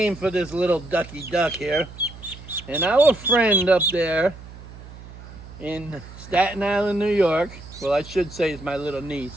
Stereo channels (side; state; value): right; noise; hum, 16 dB below the sound